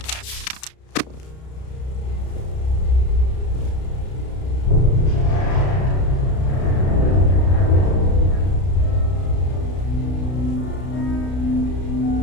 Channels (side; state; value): right; late; 32 ms